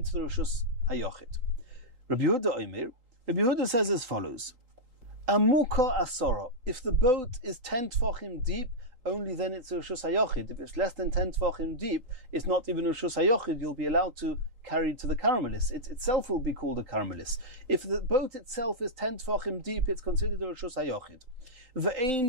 the Rishus HaYochid. Rabbi Yehuda says as follows: Amuka asora. If the boat is 10 tefachim deep, only then it's a Rishus HaYochid. If it's less than 10 tefachim deep, it's not even a Rishus HaYochid. You'll be allowed to carry to the Karmelis. It itself will be called a Karmelis. If the boat itself is 10 tefachim deep, it's considered a Rishus HaYochid.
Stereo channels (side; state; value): left; late; 3.8 ms